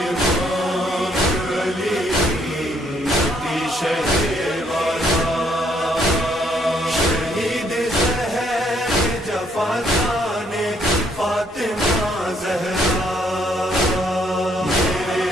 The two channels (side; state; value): both; normal; correlation 0.69